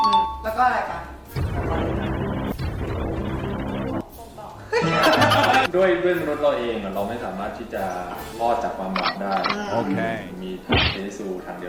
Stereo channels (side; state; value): both; identical; correlation 1.00